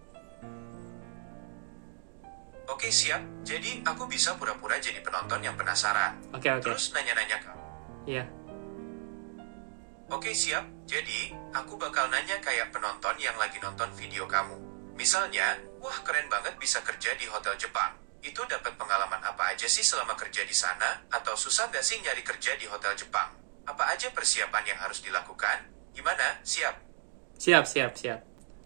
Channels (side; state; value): left; silent; digital silence